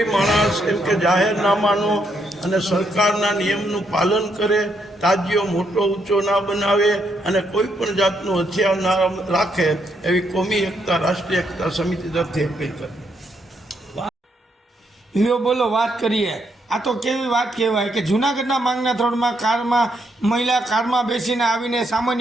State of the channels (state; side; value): normal; both; correlation 0.76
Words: માણસ એમ કે જાહેરનામાનો અને સરકારના નિયમનું પાલન કરે, તાજિયો મોટો ઊંચો ના બનાવે અને કોઈ પણ જાતનું હથિયાર ના રાખે એવી કોમી એકતા, રાષ્ટ્રીય એકતા સમિતિ તરફથી અપીલ કરી. લ્યો બોલો, વાત કરીએ. આ તો કેવી વાત કહેવાય કે જૂનાગઢના માંગના થોડમાં મહિલા કારમાં બેસીને આવીને